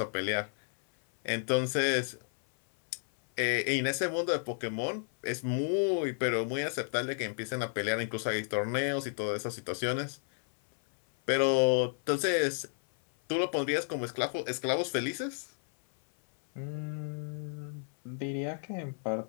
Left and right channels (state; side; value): silent; right; 56 dB below the other